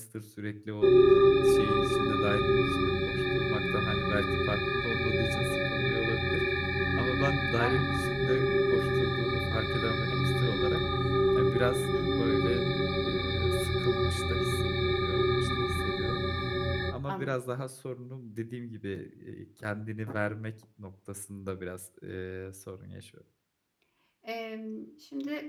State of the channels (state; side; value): identical; both; correlation 1.00